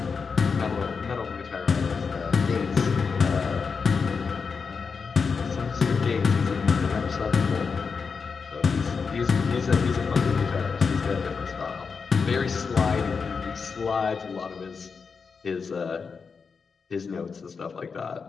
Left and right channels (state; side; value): quieter; right; 5.4 dB